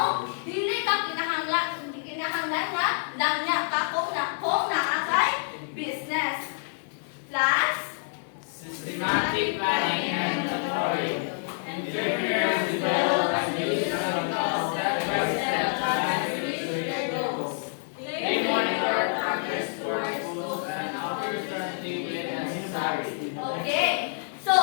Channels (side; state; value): right; silent; 60 dB below the other